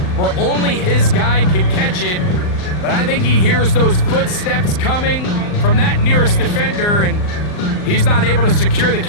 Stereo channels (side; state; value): right; late; 39 ms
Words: where only his guy can catch it. But I think he hears those footsteps coming from that nearest defender, and he's not able to secure the